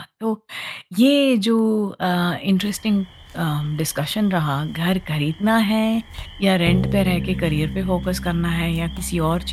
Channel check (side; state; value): both; identical; correlation 1.00